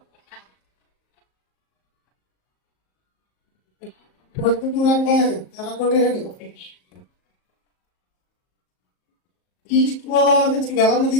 అంటే తెలంగాణ ఈస్ట్ గోదావరి నుంచి వెలమ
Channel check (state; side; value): late; right; 38 ms